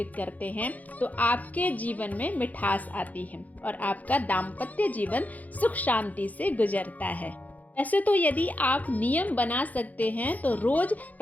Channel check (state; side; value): late; right; 0.077 ms